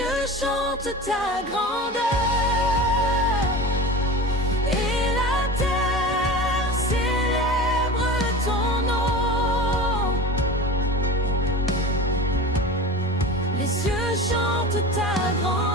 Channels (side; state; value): both; normal; correlation 0.32